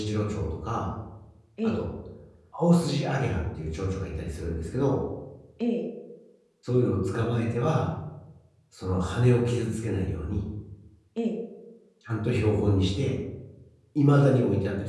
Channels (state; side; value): identical; both; correlation 1.00